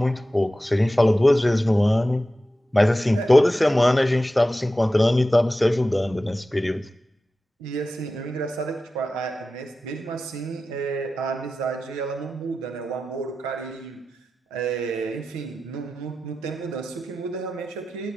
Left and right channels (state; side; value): normal; both; correlation 0.93